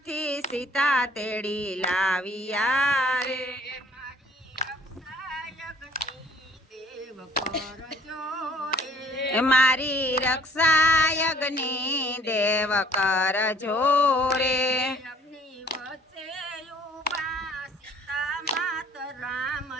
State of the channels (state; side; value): normal; both; correlation 0.57